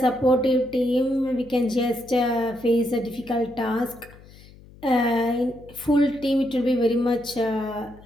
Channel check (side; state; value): left; noise; hum, 22 dB below the sound